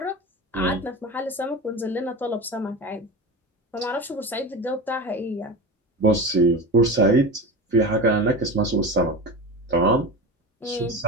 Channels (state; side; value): normal; both; correlation 0.27